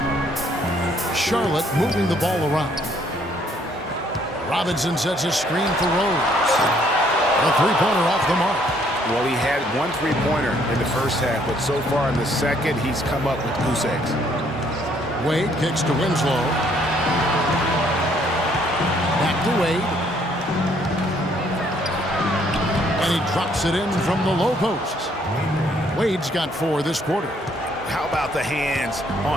Charlotte moving the ball around. Robinson sets a screen for Rose. A 3-pointer off the mark. Well, he had 1 3-pointer in the first half, but so far in the second, he's come up with goose eggs. Wade kicks to Winslow. Back to Wade. And he drops it in from the low post. Wade's got 4 this quarter. How about the hands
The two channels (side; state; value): both; normal; correlation 0.66